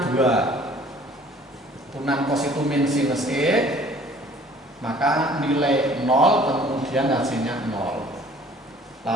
turunan cos itu min sinus E, maka nilai 0, kemudian hasilnya 0.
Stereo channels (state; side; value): normal; both; correlation 0.53